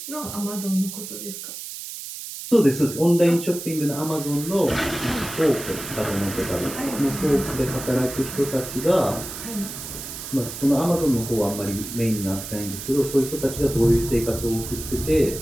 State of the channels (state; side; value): noise; right; hiss, 9 dB below the sound